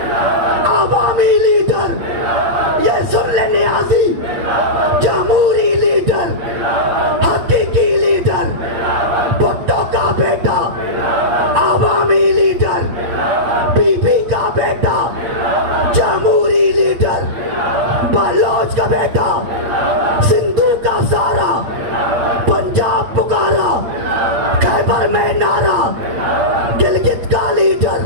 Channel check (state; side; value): late; left; 8.8 ms